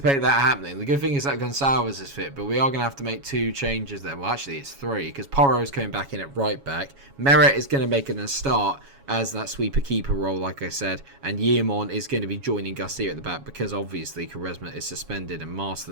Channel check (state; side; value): late; left; 7.2 ms